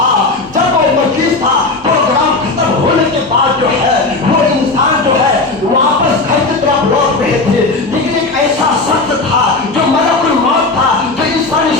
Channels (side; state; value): right; quieter; 3.4 dB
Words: جب وہ مجلس تھا پروگرام ختم ہونے کے بعد جو ہے وہ انسان جو ہے واپس گھر کی طرف لوٹ رہے تھے، لیکن ایک ایسا شخص تھا جو ملک الموت تھا، جو انسانی